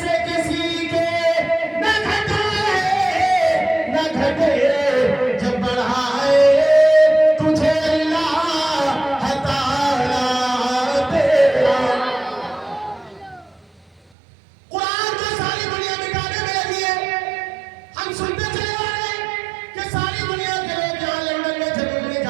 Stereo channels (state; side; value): drops out; left; at 14.0 s